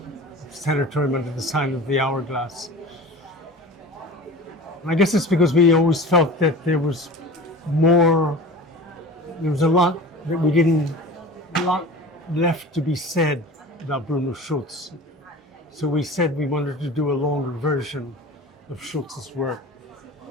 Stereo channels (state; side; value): normal; both; correlation 0.37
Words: Sanatorium under the sign of the Hourglass. And I guess it's because we always felt that there was a lot that we didn't, a lot left to be said about Bruno Schulz. So we said we wanted to do a longer version of Schulz's work.